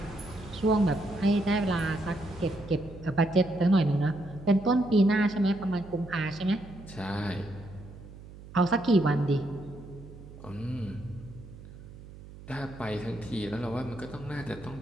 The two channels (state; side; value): noise; right; hum, 17 dB below the sound